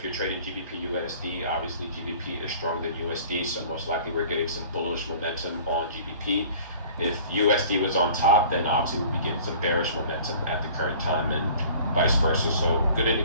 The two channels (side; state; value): both; inverted; correlation -0.47